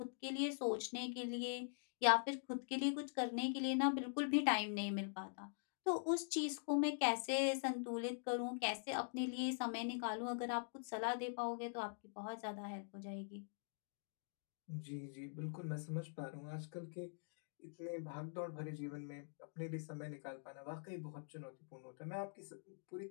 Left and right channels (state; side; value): silent; right; digital silence